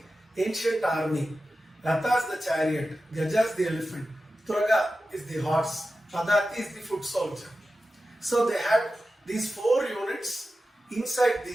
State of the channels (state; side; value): normal; both; correlation 0.93